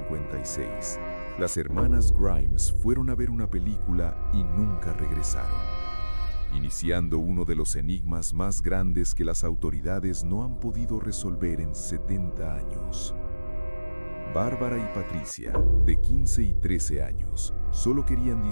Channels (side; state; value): both; inverted; correlation -1.00